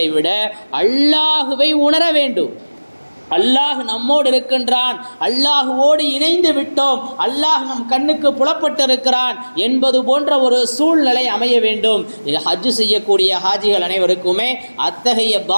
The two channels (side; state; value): both; inverted; correlation -1.00